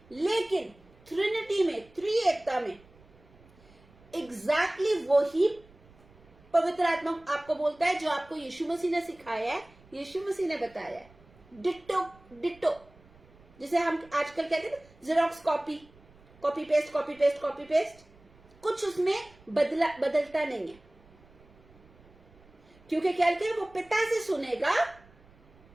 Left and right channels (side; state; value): right; noise; rumble, 27 dB below the sound